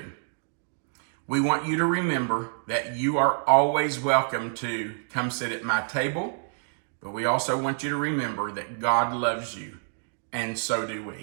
We want you to remember that you are always welcome to come sit at my table, but we also want you to remember that God loves you, and so do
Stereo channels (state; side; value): silent; left; digital silence